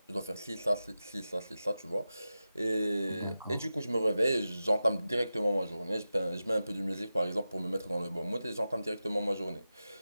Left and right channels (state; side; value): inverted; both; correlation -0.93